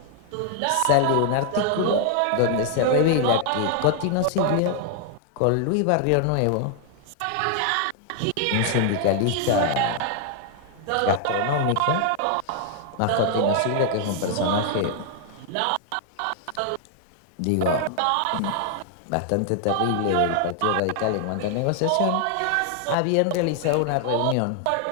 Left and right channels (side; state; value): both; different; correlation 0.00